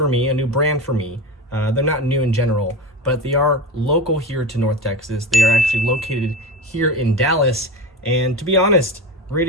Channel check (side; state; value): both; normal; correlation 0.24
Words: me, a new brand for me. They're not new in general, but they are local here to North Texas. They are actually located here in Dallas, and to be honest,